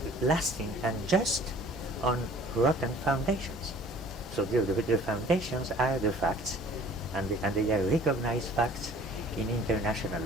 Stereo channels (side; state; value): both; normal; correlation 0.51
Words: lasting and just on rotten foundations? So the foundations are the facts, and they are recognized facts in international